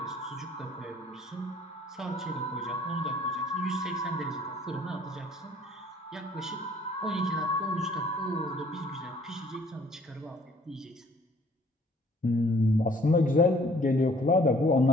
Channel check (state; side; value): normal; both; correlation 0.58